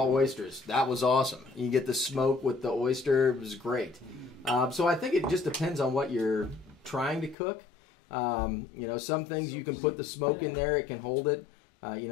oysters, that was awesome. You get the smoke with the oyster, it was great. So I think it just depends on what you're trying to cook. Some things you can put the smoke in there, it can hold it.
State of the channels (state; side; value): drops out; right; at 7.4 s